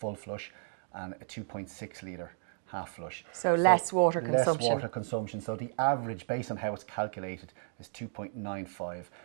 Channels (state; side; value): silent; left; digital silence